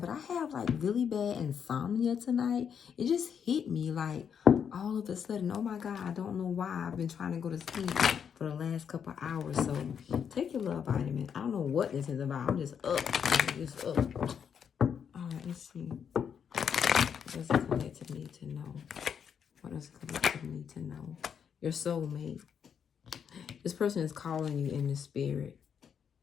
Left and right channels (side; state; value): right; quieter; 7.5 dB